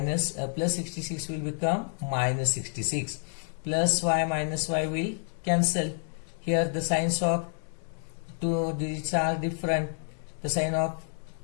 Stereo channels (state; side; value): silent; right; digital silence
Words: plus 66 will become minus 66. Plus y minus y will cancel. Here the signs of two digits are different. The sign of